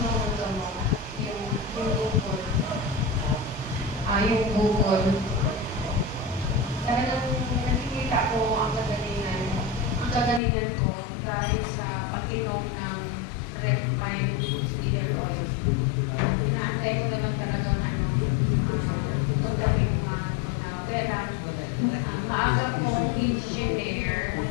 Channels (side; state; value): right; drops out; at 10.4 s